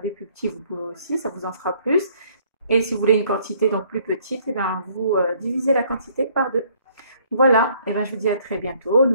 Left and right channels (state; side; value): inverted; both; correlation -0.62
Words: des plus petits, vous pouvez aussi, ça vous en fera plus. Et si vous voulez une quantité donc plus petite, vous divisez la quantité par 2. Voilà, je vous dis à très bientôt.